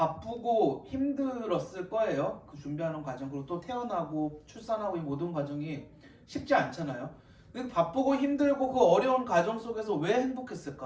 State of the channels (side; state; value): both; identical; correlation 1.00